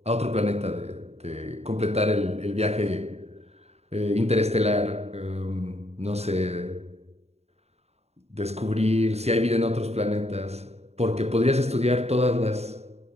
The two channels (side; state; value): left; late; 0.31 ms